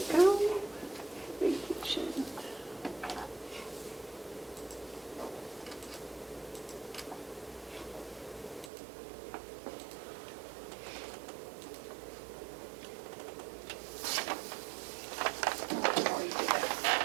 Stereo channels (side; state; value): left; drops out; at 8.7 s